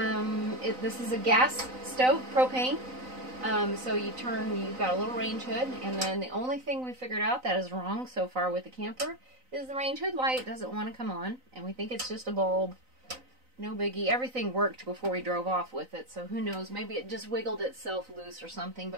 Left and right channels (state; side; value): late; left; 3.9 ms